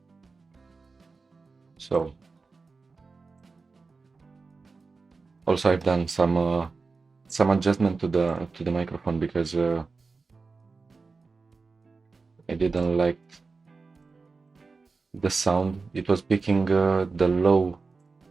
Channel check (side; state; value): left; quieter; 4.3 dB